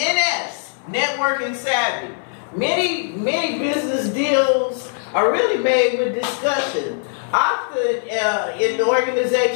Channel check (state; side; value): silent; right; 59 dB below the other